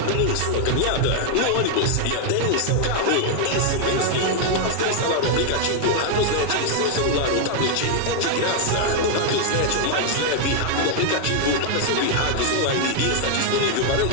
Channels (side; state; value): both; different; correlation 0.00